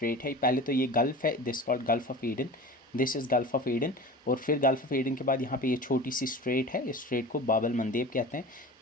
है। पहले तो ये गल्फ़ है, this called gulf of Eden, this is gulf of Eden. और फिर गल्फ़ ऑफ ईडन के बाद यहाँ पे ये छोटी सी स्ट्रेट है, इस स्ट्रेट को बाबल मंदेब कहते हैं,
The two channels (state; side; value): normal; both; correlation 0.35